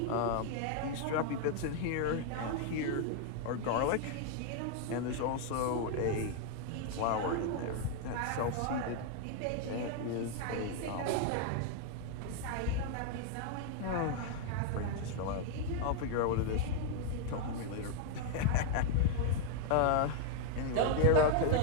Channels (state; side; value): different; both; correlation 0.00